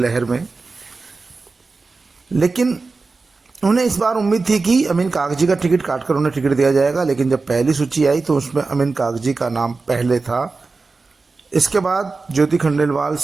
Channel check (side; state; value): left; quieter; 4.0 dB